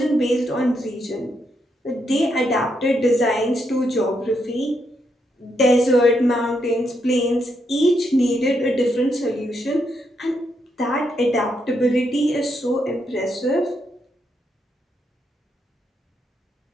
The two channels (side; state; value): both; normal; correlation 0.79